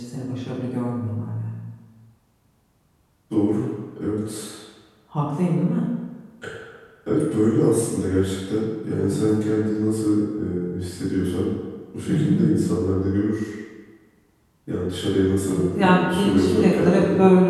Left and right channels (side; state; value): both; identical; correlation 1.00